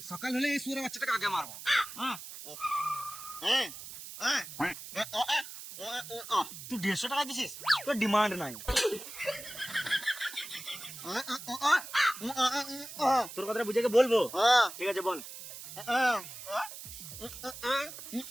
সকাল হলে এই সুরে বাচ্চাটাকে আগে মারবো। তুই 150 টাকা দিছিস, তোর ডিমান্ড নাই। তোর কথাটা বুঝে বলবো, ঠিক আছে বল।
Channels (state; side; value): noise; right; hiss, 12 dB below the sound